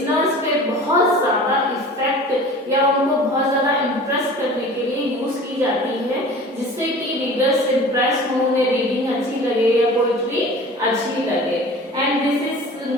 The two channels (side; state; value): both; normal; correlation 0.41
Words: पे बहुत ज्यादा इफेक्ट या उनको बहुत ज्यादा इंप्रेस करने के लिए यूज की जाती है, जिससे कि रीडर्स इंप्रेस हो, उन्हें रीडिंग अच्छी लगे या पोएट्री अच्छी लगे। And this